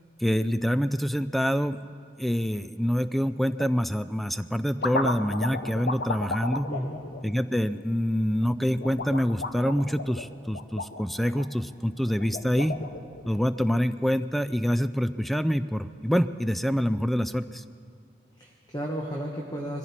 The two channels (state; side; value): normal; both; correlation 0.90